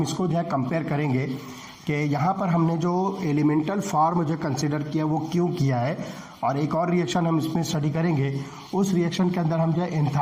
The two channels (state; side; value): identical; both; correlation 1.00